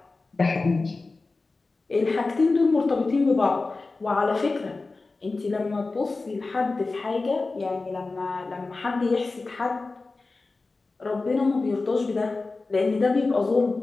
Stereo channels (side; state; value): right; quieter; 3.6 dB